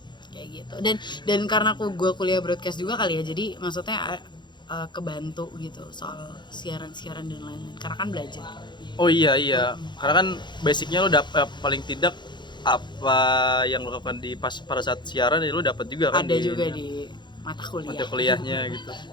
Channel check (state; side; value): late; right; 0.22 ms